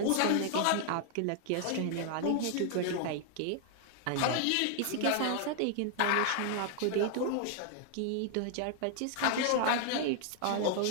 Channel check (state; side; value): different; both; correlation 0.00